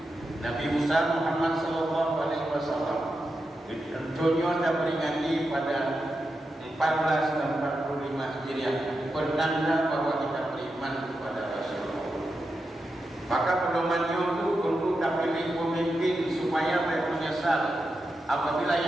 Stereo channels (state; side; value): normal; both; correlation 0.88